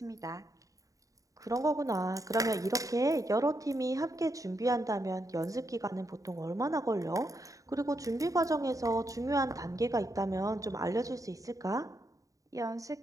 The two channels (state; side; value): late; left; 0.16 ms